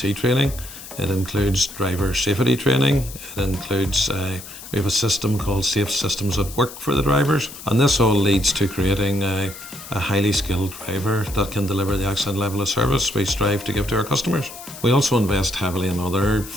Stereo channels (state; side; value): noise; left; hiss, 14 dB below the sound